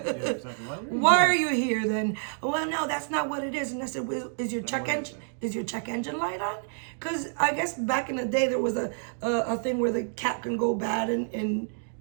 Why are you here then? Well, no, that's not what it is. And I said, well, is your check engine light on? Because I guess back in the day there was a thing where the cap can go bad and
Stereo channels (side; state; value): left; silent; 59 dB below the other